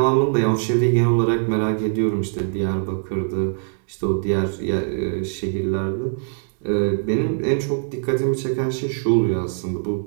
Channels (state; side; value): silent; left; 64 dB below the other